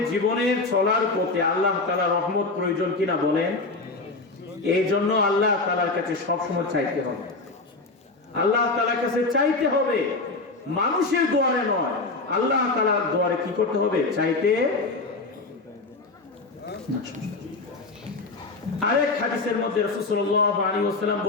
জীবনের চলার পথে আল্লাহ তাআলার রহমত প্রয়োজন কিনা বলেন? এই জন্য আল্লাহ তাআলার কাছে সবসময় চাইতে হবে, আল্লাহ তাআলার কাছে চাইতে হবে, মানুষের দুয়ারে নয়, আল্লাহ তাআলার দুয়ারে কি করতে হবে? চাইতে। আরেক হাদিসের মধ্যে রাসূল সাল্লাল্লাহু আলাইহি ওয়াসাল্লাম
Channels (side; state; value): right; quieter; 3.5 dB